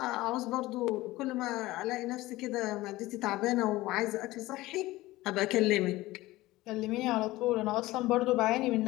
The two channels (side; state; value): right; quieter; 18.3 dB